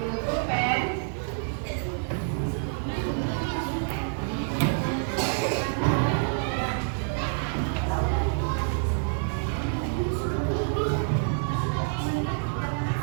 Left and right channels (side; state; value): left; silent; 60 dB below the other